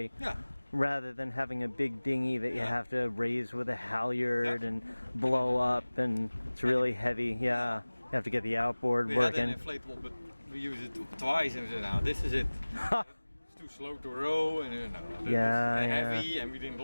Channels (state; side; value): inverted; both; correlation -1.00